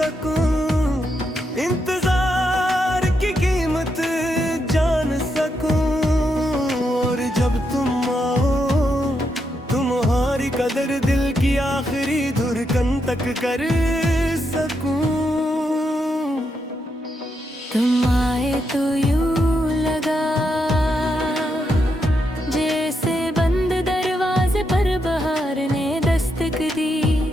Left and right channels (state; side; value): normal; both; correlation 0.82